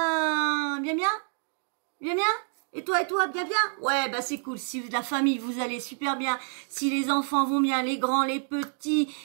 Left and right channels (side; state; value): left; silent; 60 dB below the other